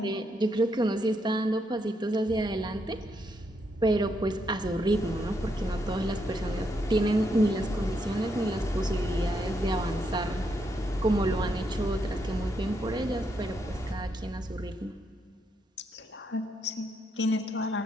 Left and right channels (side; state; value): both; normal; correlation 0.78